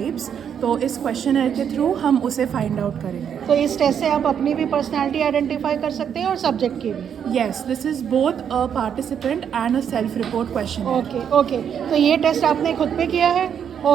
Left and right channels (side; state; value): left; quieter; 8.2 dB